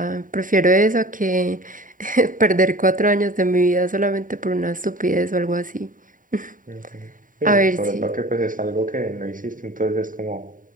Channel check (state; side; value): late; left; 0.39 ms